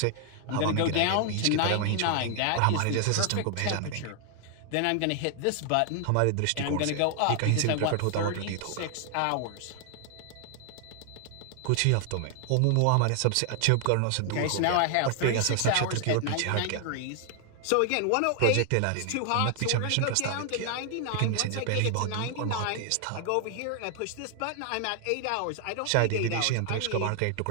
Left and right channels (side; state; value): both; different; correlation 0.00